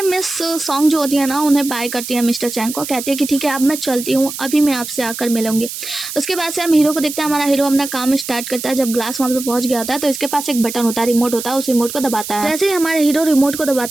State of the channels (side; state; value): right; noise; hiss, 8 dB below the sound